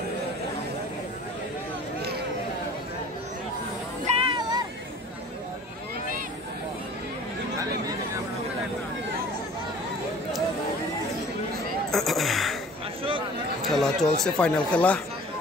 খেলা চলছে, ফাইনাল খেলা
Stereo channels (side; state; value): both; normal; correlation 0.47